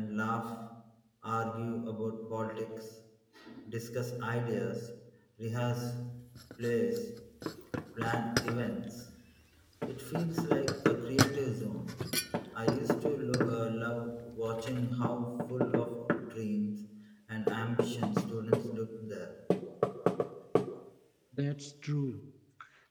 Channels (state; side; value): identical; both; correlation 1.00